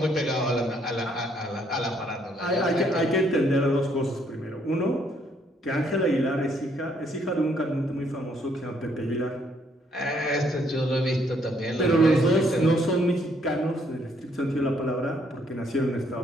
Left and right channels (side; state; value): both; normal; correlation 0.68